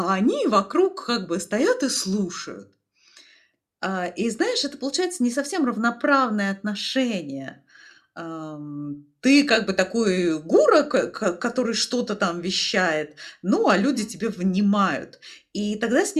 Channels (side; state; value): both; identical; correlation 1.00